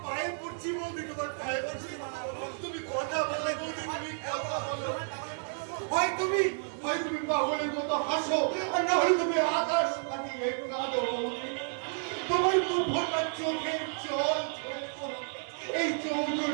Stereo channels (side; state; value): left; silent; digital silence